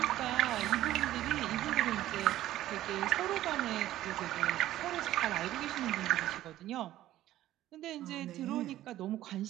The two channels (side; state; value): left; quieter; 14.1 dB